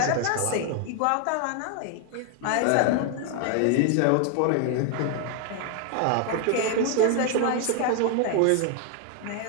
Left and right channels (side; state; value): both; different; correlation 0.00